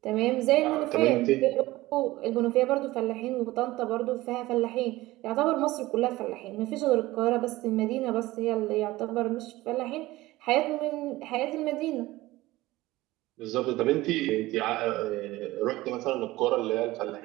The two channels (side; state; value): left; quieter; 18.3 dB